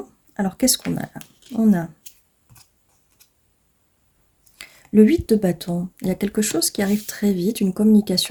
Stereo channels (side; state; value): both; identical; correlation 1.00